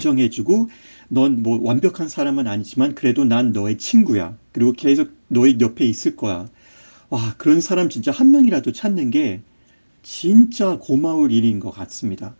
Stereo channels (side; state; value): both; inverted; correlation -1.00